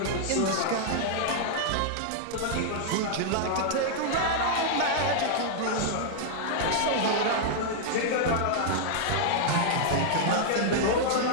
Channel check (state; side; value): different; both; correlation -0.01